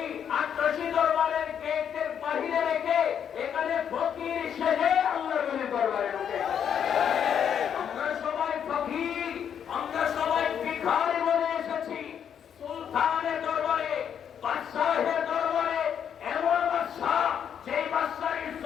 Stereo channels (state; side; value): quieter; right; 8.4 dB